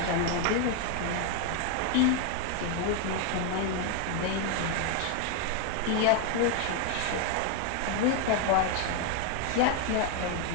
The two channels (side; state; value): both; different; correlation 0.01